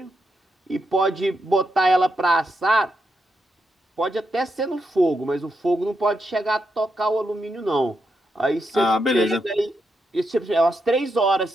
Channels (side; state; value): both; normal; correlation 0.83